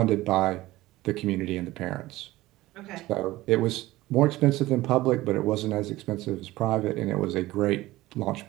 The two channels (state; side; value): quieter; left; 17.7 dB